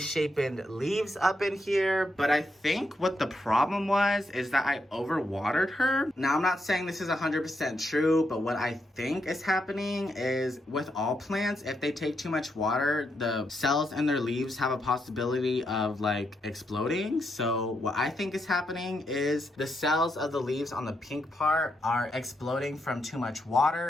leaves up in here. But I think what the problem was is that I overwatered her. Now, I'm not saying this is 100% true, but what I think is happening is with all plants, if they take too much water, the cells in their leaves have a possibility of like exploding. So what I think is happening is the cells of the leaves on the pink part are exploding from too much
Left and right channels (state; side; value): normal; both; correlation 0.81